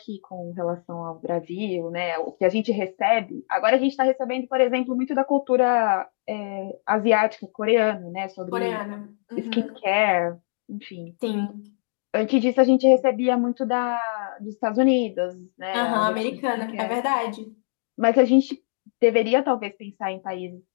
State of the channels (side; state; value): right; silent; digital silence